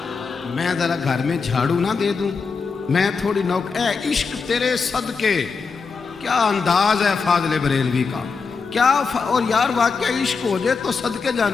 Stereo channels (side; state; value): right; quieter; 5.0 dB